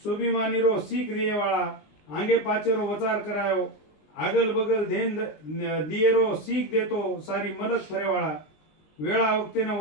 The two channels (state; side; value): late; right; 19 ms